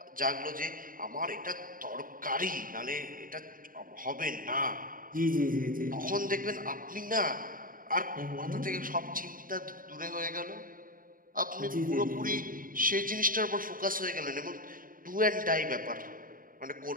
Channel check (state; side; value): late; left; 0.40 ms